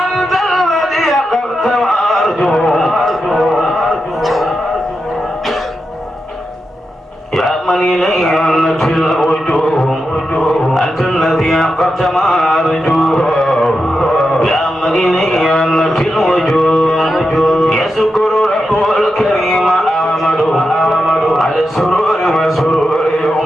الذي قلت وأرجو يا من إليه أنت الوجوه أنت الذي قلت ما أرجوه يا من إليه أنت الوجوه يذكر رب الكريم أحمد على السرور وسرور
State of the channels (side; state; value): both; normal; correlation 0.88